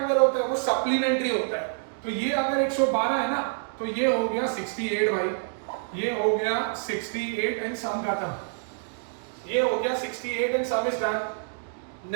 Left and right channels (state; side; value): silent; left; digital silence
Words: होता है वो सप्लीमेंट्री होता है। तो ये अगर 112 है ना, तो ये हो गया 68 भाई, ये हो गया 68 एंड सम खत्म, ये हो गया 68 एंड सम इज डन।